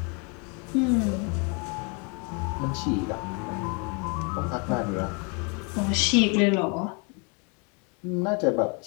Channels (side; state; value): right; quieter; 34.2 dB